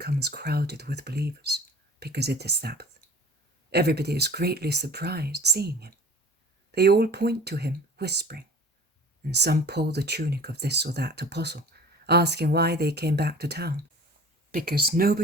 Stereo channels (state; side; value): normal; both; correlation 0.44